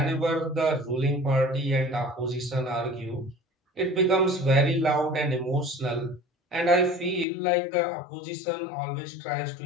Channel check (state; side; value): drops out; right; at 7.2 s